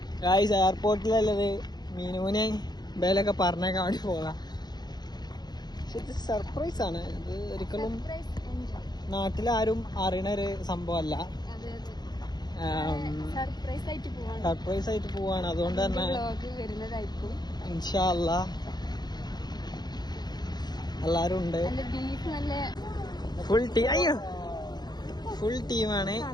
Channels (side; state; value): right; late; 0.20 ms